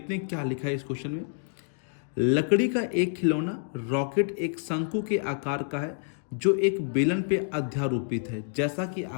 हैं क्या लिखा है इस क्वेश्चन में। लकड़ी का एक खिलौना रॉकेट एक शंकु के आकार का है जो एक बेलन पे अध्यारोपित है, जैसा कि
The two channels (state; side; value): silent; right; 59 dB below the other